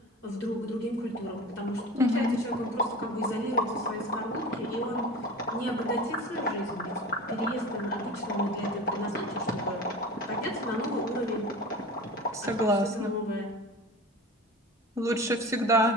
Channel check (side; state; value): both; normal; correlation 0.34